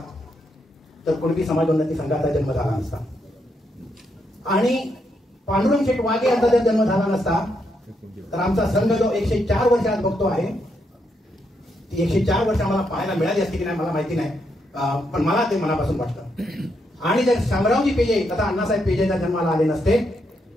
तर कुणबी समाज उन्नती संघाचा जन्म झाला नसता आणि पांडुरंग शेठ वाघे यांचा जर जन्म झाला नसता तर आमचा संघ जो 104 वर्ष आज बघतो आहे ती 104 वर्ष आम्हाला पाहायला मिळाली असती की नाही मला माहिती नाही, पण मला ते मनापासून वाटतं. आणि जर शामरावजी पेजे तथा अण्णासाहेब पेजेच्या जन्माला आले नसते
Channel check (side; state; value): both; normal; correlation 0.79